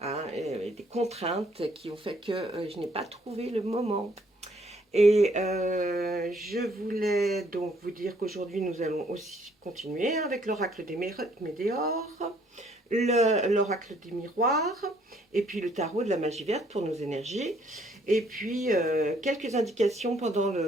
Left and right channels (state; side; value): normal; both; correlation 0.65